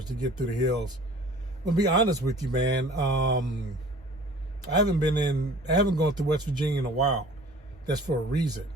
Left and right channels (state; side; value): normal; both; correlation 0.47